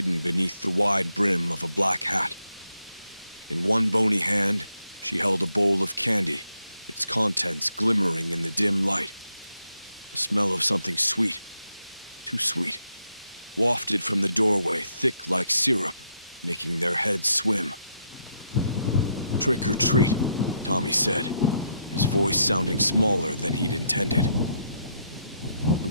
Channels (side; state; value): both; inverted; correlation -0.77